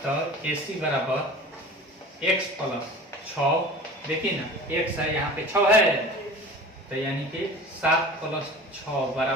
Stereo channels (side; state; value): both; normal; correlation 0.39